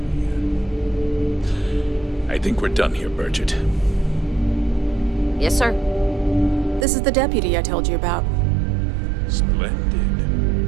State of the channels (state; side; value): drops out; left; at 6.9 s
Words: again. I think we're done here, Bridget. Yes, sir. This is the deputy I told you about.